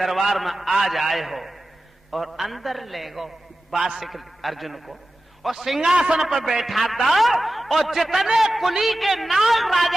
में आज आए हो। और अंदर ले गो बासिक अर्जुन को और सिंहासन पर बैठा दो और जितने कुली के नाग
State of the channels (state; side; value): normal; both; correlation 0.94